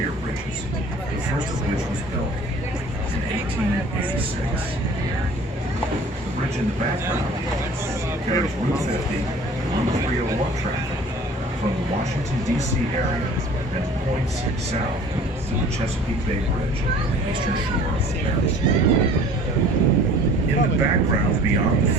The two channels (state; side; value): normal; both; correlation 0.48